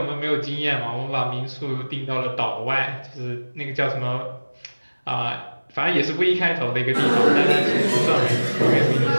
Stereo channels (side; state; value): both; inverted; correlation -1.00